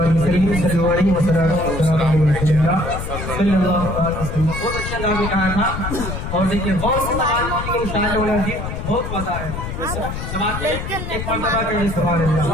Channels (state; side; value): noise; left; rumble, 6 dB below the sound